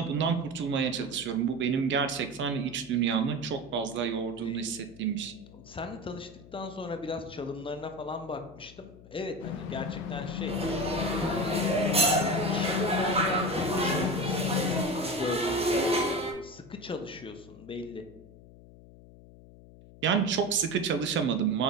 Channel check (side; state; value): left; noise; hum, 20 dB below the sound